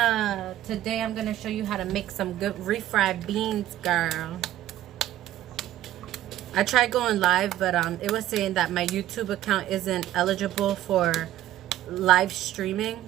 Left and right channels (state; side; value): quieter; left; 13.3 dB